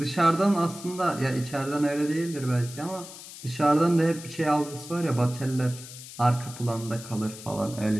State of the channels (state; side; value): noise; left; hiss, 14 dB below the sound